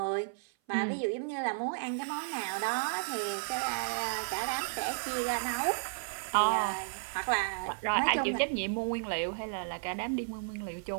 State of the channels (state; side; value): silent; left; 56 dB below the other